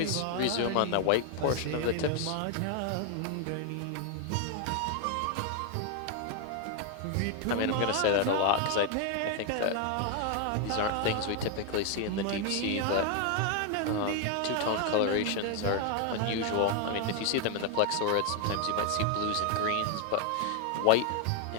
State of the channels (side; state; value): both; different; correlation 0.00